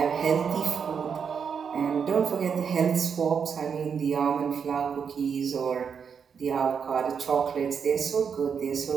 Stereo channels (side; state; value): left; quieter; 6.7 dB